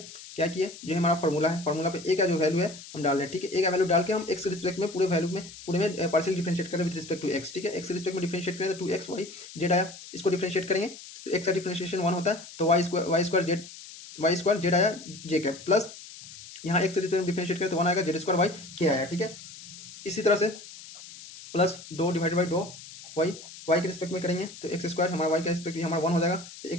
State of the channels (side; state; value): left; noise; hiss, 16 dB below the sound